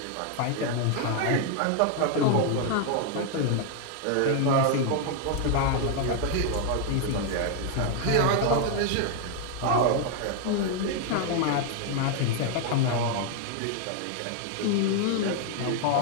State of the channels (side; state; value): both; different; correlation 0.00